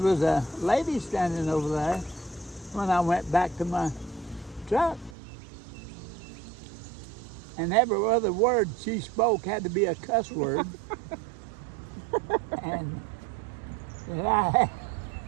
a lady standing over there when I went back to my truck. And every other word she spoke had to be a cuss word. And I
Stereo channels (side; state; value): left; drops out; at 5.2 s